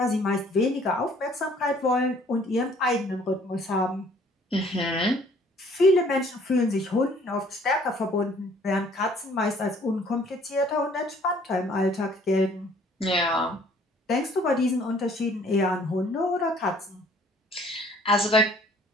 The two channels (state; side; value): normal; both; correlation 0.58